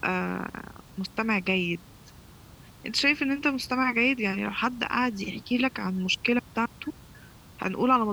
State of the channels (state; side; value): identical; both; correlation 1.00